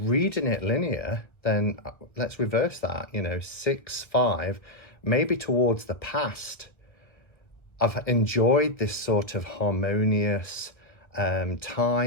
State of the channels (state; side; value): late; right; 1.2 ms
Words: it linear, then let's reverse that, you know, 6-5, maybe towards the past. I've enjoyed this sort of harmonious